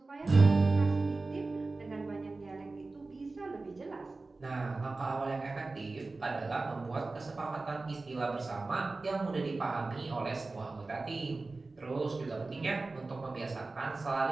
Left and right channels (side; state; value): left; quieter; 3.5 dB